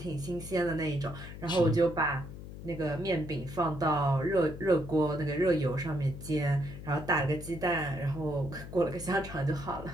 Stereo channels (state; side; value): noise; left; hum, 12 dB below the sound